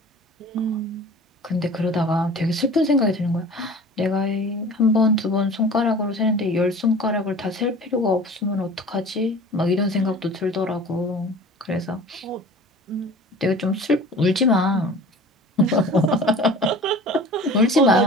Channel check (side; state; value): both; normal; correlation 0.42